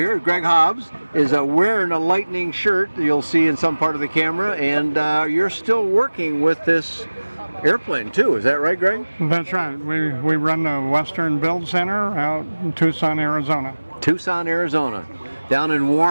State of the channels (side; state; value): both; inverted; correlation -1.00